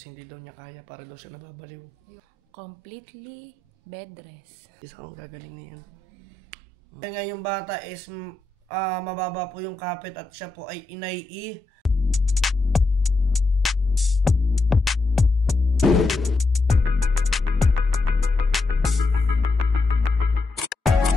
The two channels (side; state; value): right; quieter; 3.4 dB